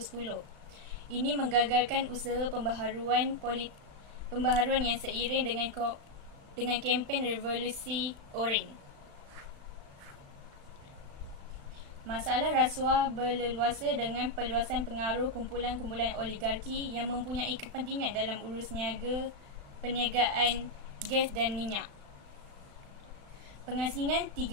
Ini menggagalkan usaha pembaharuan yang seiring dengan kempen revolusi Orange. Masalah rasuah berleluasa dengan perluasan pengaruh kumpulan-kumpulan oligarki yang mempunyai kepentingan dalam urus perniagaan gas dan minyak. Pengasingan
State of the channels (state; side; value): late; left; 35 ms